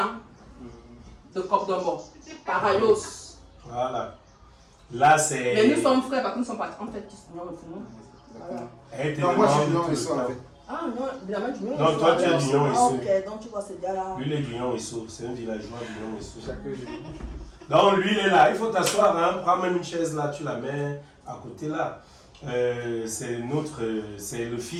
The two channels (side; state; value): both; identical; correlation 1.00